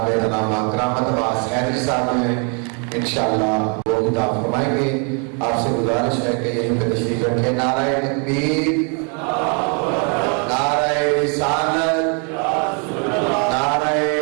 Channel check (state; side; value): quieter; left; 37.9 dB